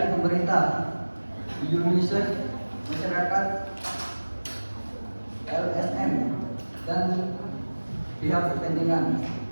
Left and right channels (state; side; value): inverted; both; correlation -1.00